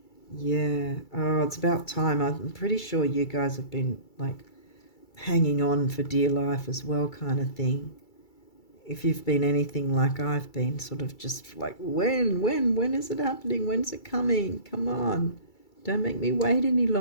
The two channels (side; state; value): right; late; 2.3 ms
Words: Yeah. Oh, it's about time. I'm pretty sure you guys have been like hanging on for dear life as well, kind of thing. If you've been anything like I've been, sort of just like, when is it happening? When's it coming? Come on. Don't make me wait any